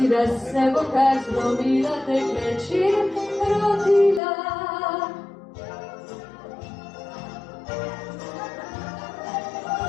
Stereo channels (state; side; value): drops out; right; at 4.2 s